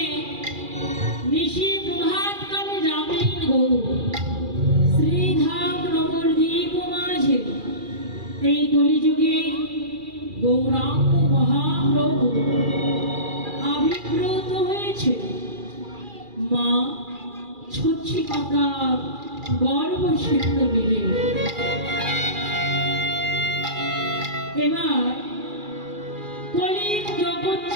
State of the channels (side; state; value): left; late; 2.4 ms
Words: নিশি প্রভাত কালে যাবেন গৌর শ্রীধাম নবদ্বীপ মাঝে এই কলিযুগে গৌরাঙ্গ মহাপ্রভু আবির্ভূত হয়েছে মা ছচ্ছি মাতার গর্ভসিদ্ধ মিলে। এবার কলির